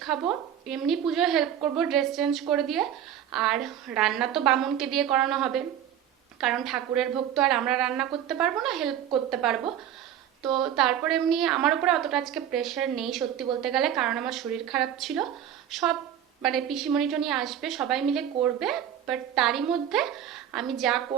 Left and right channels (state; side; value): quieter; left; 10.1 dB